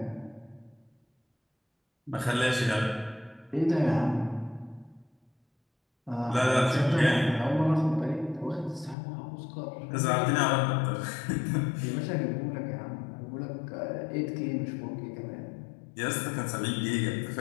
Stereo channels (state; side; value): drops out; right; at 9.0 s